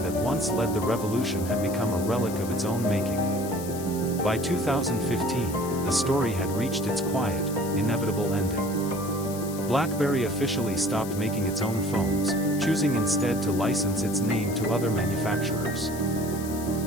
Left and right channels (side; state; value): left; noise; hiss, 13 dB below the sound